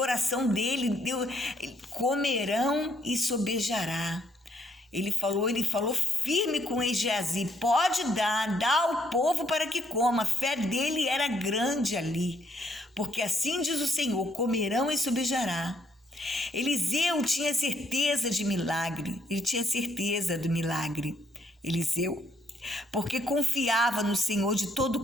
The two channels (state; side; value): normal; both; correlation 0.70